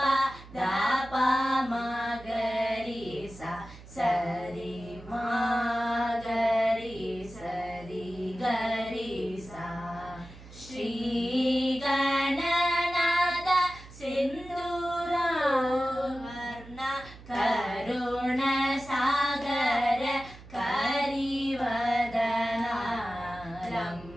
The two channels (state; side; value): noise; right; hum, 18 dB below the sound